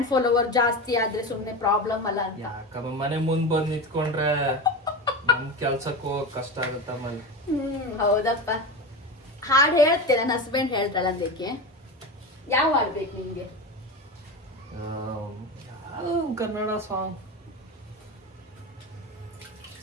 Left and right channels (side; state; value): both; normal; correlation 0.23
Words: ಫಾಲೋವರ್ ಜಾಸ್ತಿ ಆದ್ರೆ ಸುಮ್ನೆ ಪ್ರಾಬ್ಲಮ್ ಅಲ್ಲ ಅಂತ. ಯಾಕಮ್ಮ ಮನೆ ಮುಂದ್ ಬಂದ್ ನಿಂತ್ಕೊಂಡ್ರೆ ನಮ್ ಕೆಲ್ಸಕ್ಕೆ ಹೋಗಕ್ ಕಷ್ಟ ಆಗುತ್ತೆ ಆಮೇಲೆ. ಹೌದಪ್ಪ. ಹಾಡು ಹೇಳ್ತೆ, ನನ್ನ ಹಸ್ಬೆಂಡ್ ಹೇಳ್ತಾಳ ಅದಕ್ಕೆ. ಯಾವ ಹಾಡ್ಬೇಕು ನಿಮ್ಗೆ? ಕನ್ನಡ ಸಾಂಗ್.